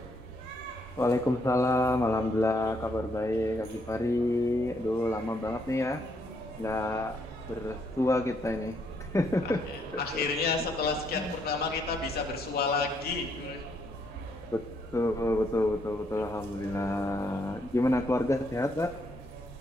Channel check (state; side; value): normal; both; correlation 0.73